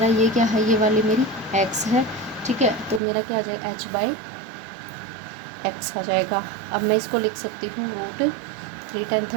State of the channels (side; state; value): left; drops out; at 3.0 s